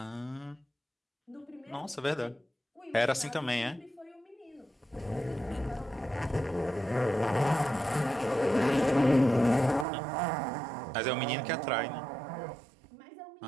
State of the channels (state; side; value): drops out; left; at 9.9 s